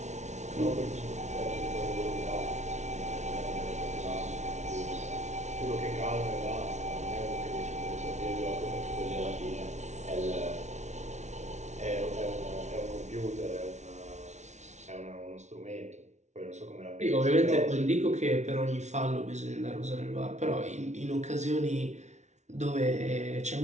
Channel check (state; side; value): late; left; 0.33 ms